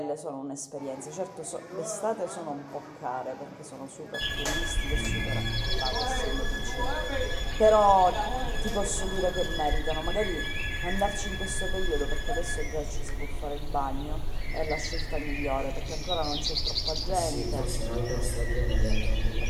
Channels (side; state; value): both; identical; correlation 1.00